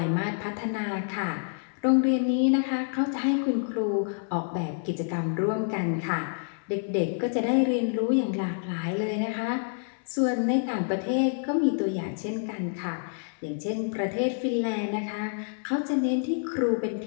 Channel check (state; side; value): silent; right; 59 dB below the other